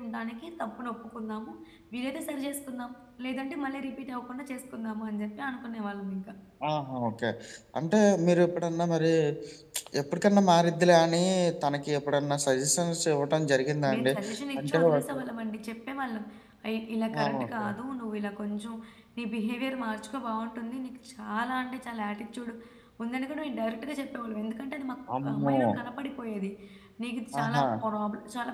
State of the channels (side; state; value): both; identical; correlation 1.00